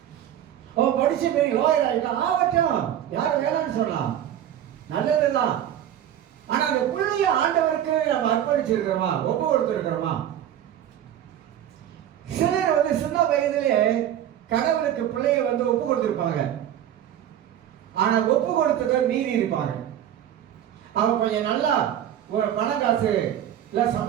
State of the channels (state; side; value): quieter; left; 10.9 dB